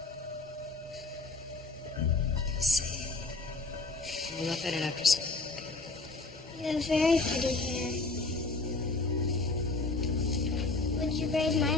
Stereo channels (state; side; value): quieter; right; 3.5 dB